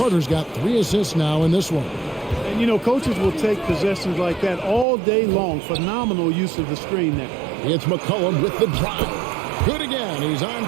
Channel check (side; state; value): left; drops out; at 4.9 s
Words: got 3 assists now in this one. And, you know, coaches will take possessions like that all day long. Phenomenal use of the screen there. It's McCollum with the drive. Good again. He's on